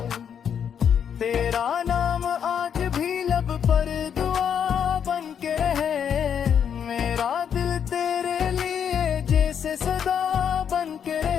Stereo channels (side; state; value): right; quieter; 8.0 dB